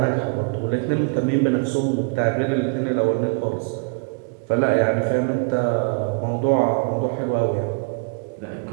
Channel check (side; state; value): left; quieter; 37.6 dB